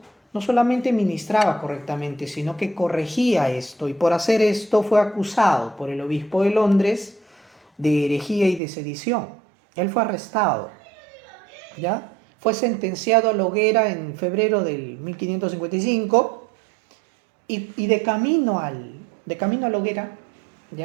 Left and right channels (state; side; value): drops out; left; at 8.6 s